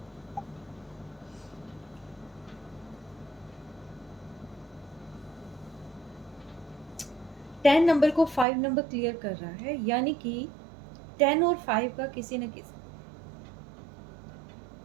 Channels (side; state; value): left; drops out; at 8.5 s